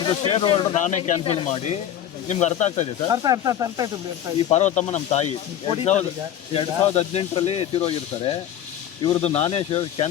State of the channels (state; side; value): quieter; right; 10.5 dB